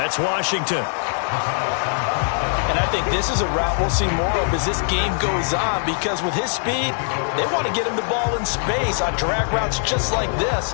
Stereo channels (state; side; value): silent; right; digital silence